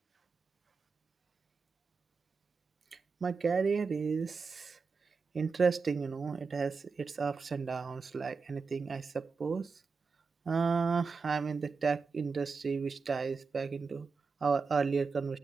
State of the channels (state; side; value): quieter; left; 4.8 dB